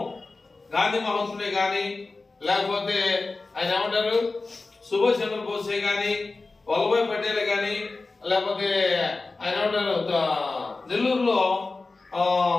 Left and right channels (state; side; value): quieter; right; 3.6 dB